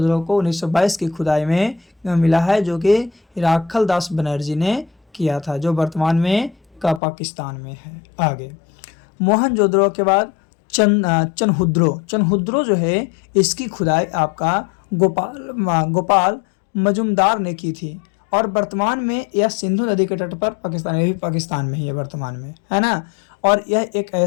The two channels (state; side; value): drops out; right; at 7.0 s